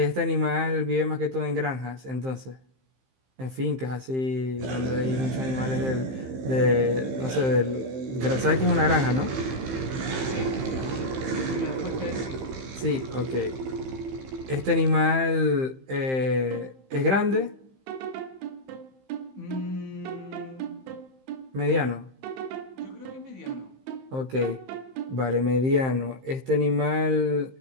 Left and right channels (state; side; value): late; left; 15 ms